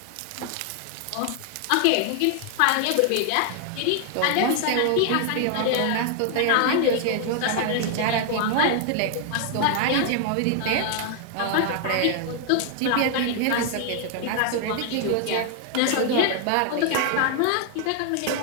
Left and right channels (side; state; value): both; different; correlation 0.00